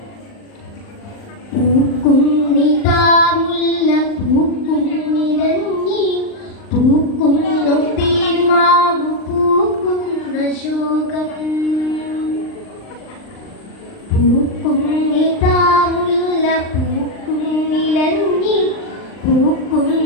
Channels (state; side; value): late; right; 39 ms